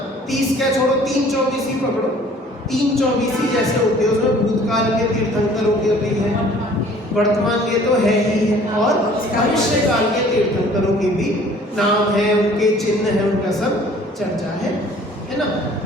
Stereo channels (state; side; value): normal; both; correlation 0.53